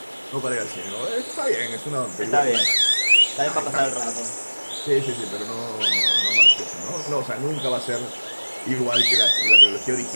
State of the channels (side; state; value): both; inverted; correlation -1.00